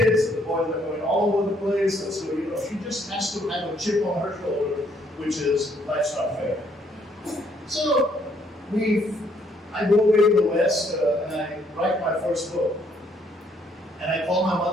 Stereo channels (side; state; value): both; normal; correlation 0.68